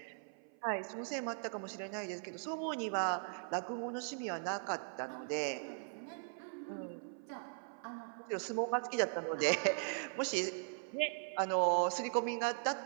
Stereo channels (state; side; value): silent; left; 51 dB below the other